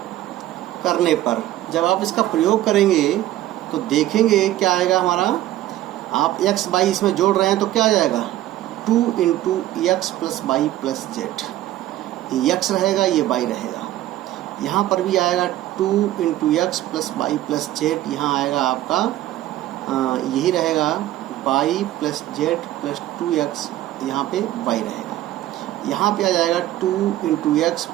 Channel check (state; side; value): quieter; left; 14.4 dB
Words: करने पर, जब आप इसका प्रयोग करेंगे तो देखेंगे क्या आएगा हमारा। आप x बाई इसमें जोड़ रहे हैं तो क्या आ जाएगा 2 into x plus y plus z. ये x रहेगा, ये y रहेगा। यहाँ पर भी आएगा 2 into x plus y plus z. यहाँ आएगा आपका यही रहेगा y plus z plus 2x, यहाँ पे y रहेगा। यहाँ पे आ जाएगा 2 into x